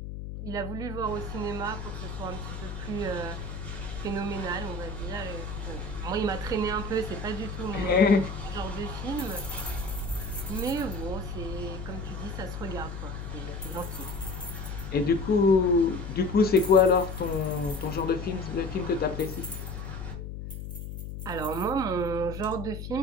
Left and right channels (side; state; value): left; noise; hum, 7 dB below the sound